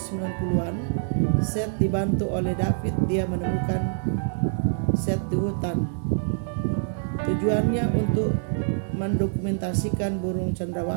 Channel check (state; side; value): silent; left; digital silence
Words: Seth dibantu oleh David. Dia menemukan Seth di hutan. Tujuannya untuk mendokumentasikan burung